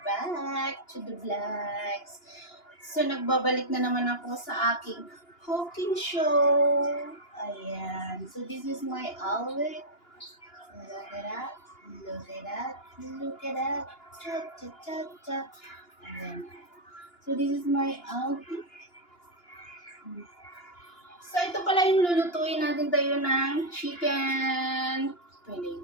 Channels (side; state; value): right; late; 2.9 ms